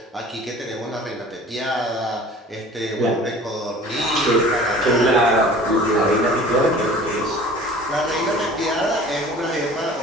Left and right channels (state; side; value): normal; both; correlation 0.44